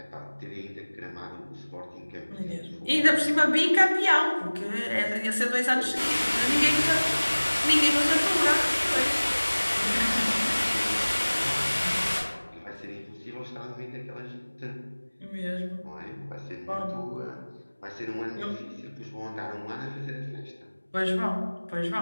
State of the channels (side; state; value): both; inverted; correlation -1.00